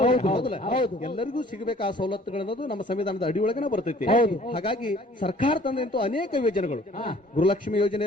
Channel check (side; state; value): both; normal; correlation 0.54